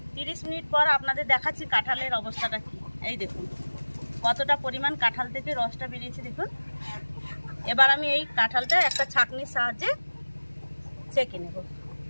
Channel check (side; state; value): both; inverted; correlation -1.00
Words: 30 মিনিট পর আপনাদের দেখাচ্ছি কাঁঠালের অবস্থাটা কি। এই দেখুন কতটা পরিমাণ কাঁঠাল থেকে রসটা বেরিয়েছে দেখুন। এবার আমি এই কাঁঠালটা একটা ছাঁকনির সাহায্যে ছেঁকে নেব।